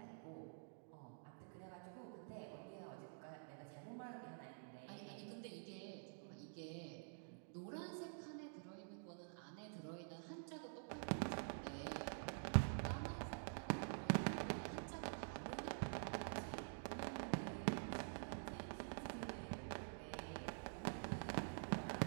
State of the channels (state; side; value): silent; left; digital silence